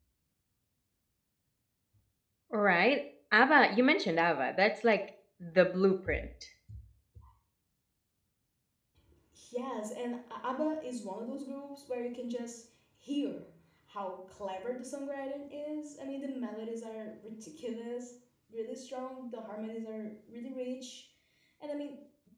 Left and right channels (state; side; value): identical; both; correlation 1.00